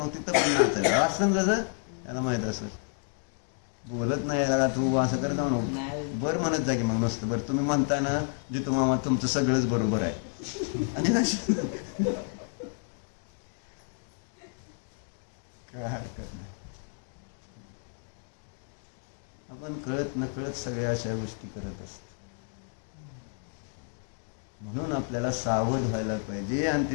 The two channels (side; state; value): right; silent; 58 dB below the other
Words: पण नाचायचं असं कसं त्याला माहित असेल. बोलत नाही का तू असं करत म्हणून बरं म्हणत जा की मग नुसतं बरं. तुम्ही म्हणता ना जितू मामा तुमचं सगळंच बरोबर आहे आणि काय हरकत नाही. आपण कळत नकळत सगळ्या अशा गोष्टी करत असतो. म्हणून आपल्याला सावध व्हायला पाहिजे. आणि